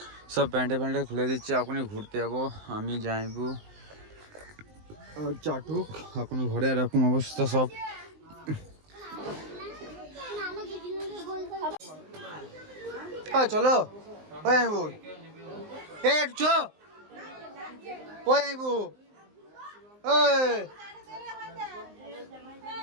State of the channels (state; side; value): late; left; 19 ms